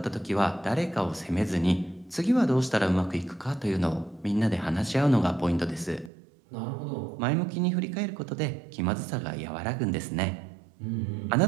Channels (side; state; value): left; drops out; at 6.1 s